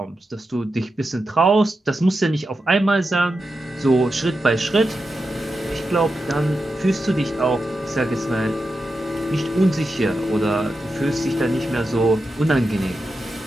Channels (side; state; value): both; normal; correlation 0.89